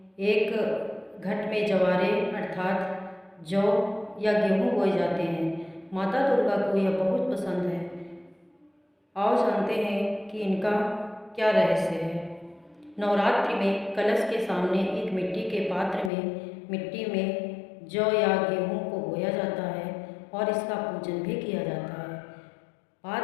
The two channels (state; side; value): drops out; right; at 16.1 s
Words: एक घट में जवारे अर्थात जौ या गेहूँ बोए जाते हैं। माता दुर्गा को यह बहुत पसंद है। आओ जानते हैं कि इनका क्या रहस्य है। नवरात्रि में कलश के सामने एक मिट्टी के पात्र में मिट्टी में जौ या गेहूँ को बोया जाता है और इसका पूजन भी किया जाता है।